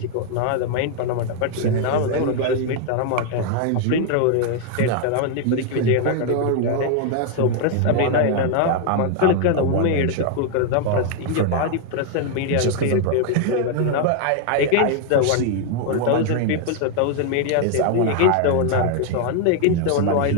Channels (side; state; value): both; different; correlation 0.00